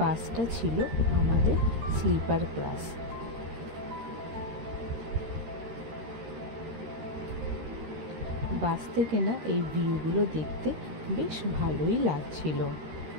ছিল আমাদের স্লিপার ক্লাস। বাস থেকে না এই ভিউগুলো দেখতে বেশ ভালোই লাগছিল।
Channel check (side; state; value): left; late; 13 ms